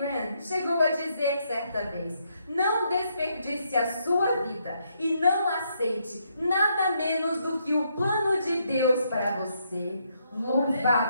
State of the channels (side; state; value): both; inverted; correlation -0.76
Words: chegou a dizer certa vez, não desperdice a sua vida e não aceite nada menos do que o plano de Deus para você.